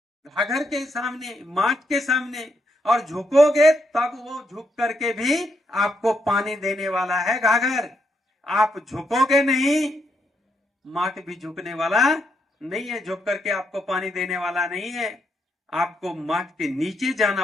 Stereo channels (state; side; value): normal; both; correlation 0.78